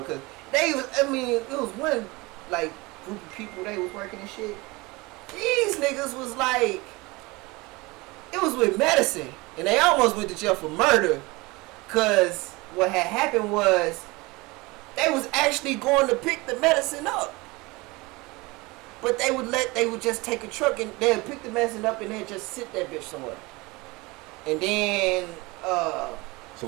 Cause it was one like group of people they was working and shit. These niggas was like, it was with medicine, and they almost went to jail for murder. Cause what had happened was, they was actually going to pick the medicine up. But they would just take a truck and they'd pick the medicine up and they'd just sit that bitch somewhere. And then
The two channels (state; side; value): quieter; left; 23.6 dB